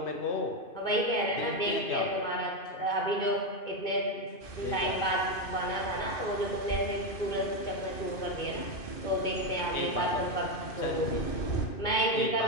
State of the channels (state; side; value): late; right; 2.6 ms